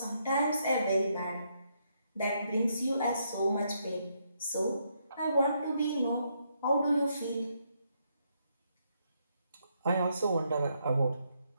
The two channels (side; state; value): both; inverted; correlation -0.76